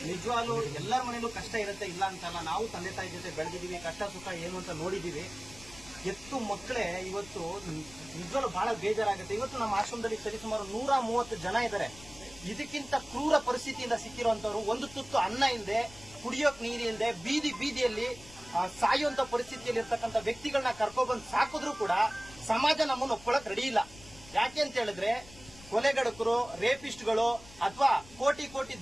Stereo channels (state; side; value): noise; left; rumble, 20 dB below the sound